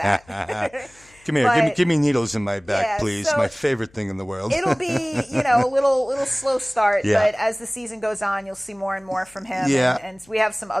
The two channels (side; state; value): left; noise; hum, 29 dB below the sound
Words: Come here, give me needles in my back, please. So my favorite thing in the world. It'll be, a little slow start, but as the season goes on, you'll see more and more from him. Yeah. And we have some